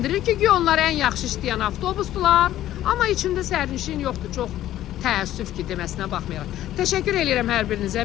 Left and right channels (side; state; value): right; quieter; 13.2 dB